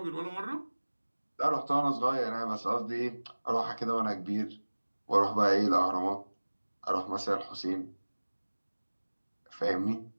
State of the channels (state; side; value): inverted; both; correlation -1.00